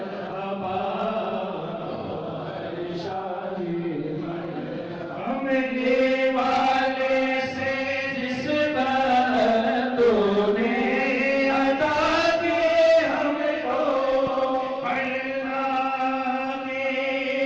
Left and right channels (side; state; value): both; identical; correlation 1.00